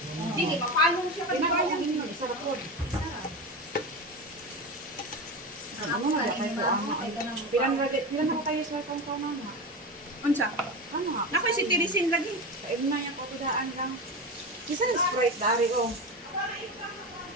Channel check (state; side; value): normal; both; correlation 0.22